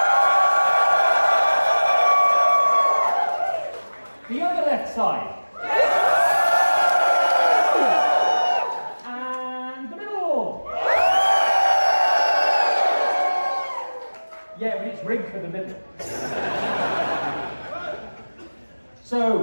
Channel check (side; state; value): both; inverted; correlation -1.00